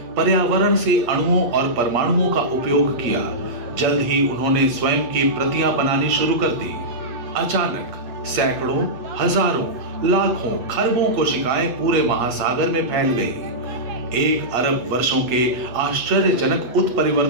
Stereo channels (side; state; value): left; late; 8.5 ms